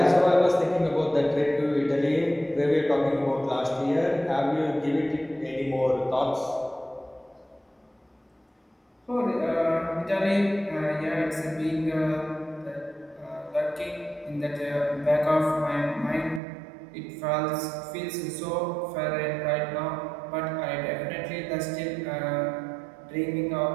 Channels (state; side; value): drops out; left; at 16.4 s